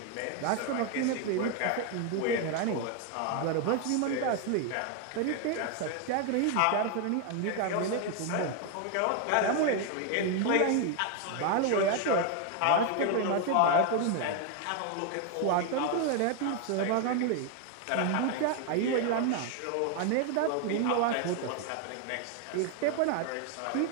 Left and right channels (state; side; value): different; both; correlation 0.01